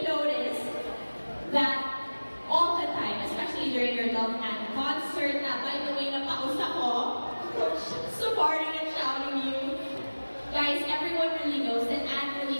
noticed that all the time, especially during your Love and concert, na by the way, napausap ko, supporting and shouting you. Guys, everyone really knows that Anne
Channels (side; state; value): both; inverted; correlation -1.00